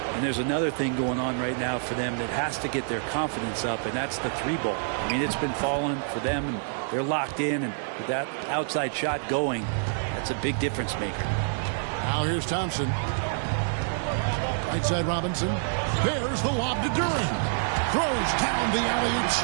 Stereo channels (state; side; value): silent; left; digital silence